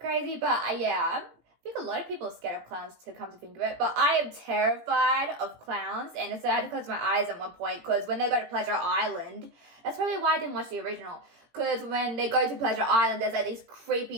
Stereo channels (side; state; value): left; late; 18 ms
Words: but yeah, I think a lot of people are scared of clowns, to come to think of it, but I am terrified of clowns, and so I had to close my eyes at one point, because when they go to Pleasure Island, that's probably why I didn't watch the original, because when they go to Pleasure Island, there's like these